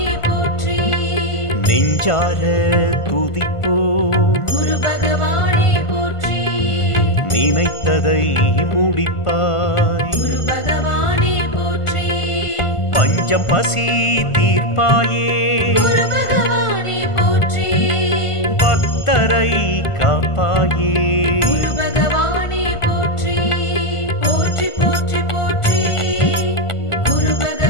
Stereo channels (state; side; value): late; right; 1.5 ms